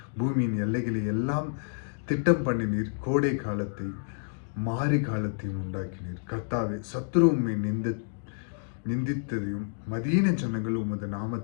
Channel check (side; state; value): right; silent; digital silence